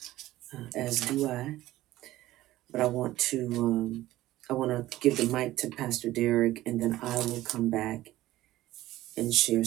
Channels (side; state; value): left; quieter; 15.9 dB